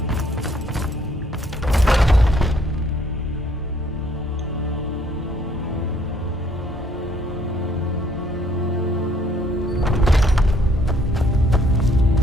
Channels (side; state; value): both; normal; correlation 0.64